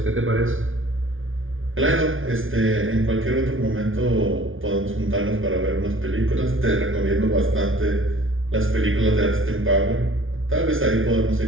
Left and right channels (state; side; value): late; left; 0.58 ms